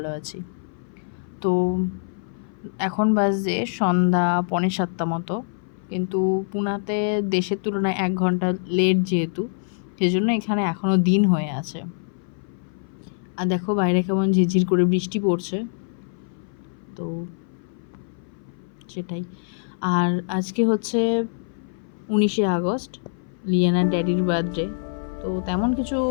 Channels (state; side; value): silent; right; 57 dB below the other